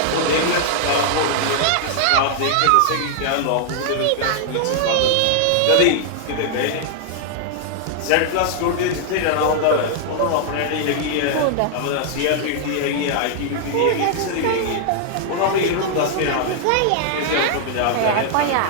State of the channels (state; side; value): different; both; correlation 0.00